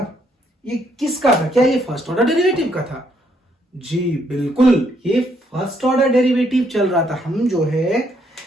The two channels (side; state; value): both; normal; correlation 0.71